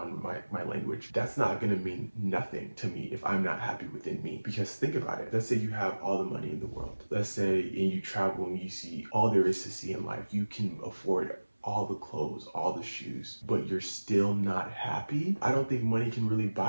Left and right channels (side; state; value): both; inverted; correlation -1.00